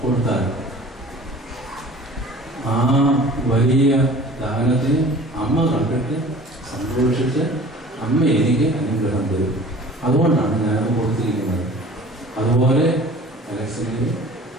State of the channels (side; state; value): both; normal; correlation 0.45